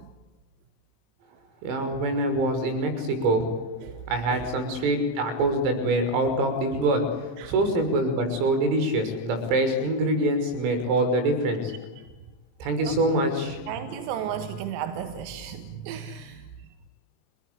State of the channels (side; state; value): left; late; 22 ms